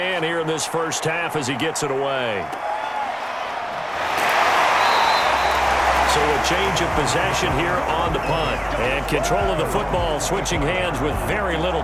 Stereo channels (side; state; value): both; identical; correlation 1.00